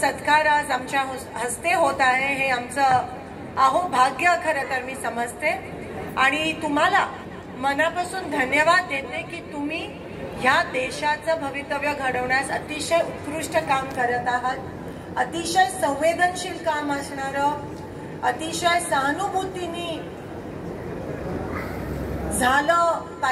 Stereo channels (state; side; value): identical; both; correlation 1.00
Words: आज आमच्या हस्ते होत आहे. हे आमचं अहोभाग्य खरं तर मी समजते आणि तुम्हाला मनापासून धन्यवाद देते की तुम्ही ह्या देशाचं भवितव्य घडवण्यास अतिशय उत्कृष्ट काम करत आहात. अतिशय संवेदनशील काम असणारं, अतिशय सहानुभूतीने झालं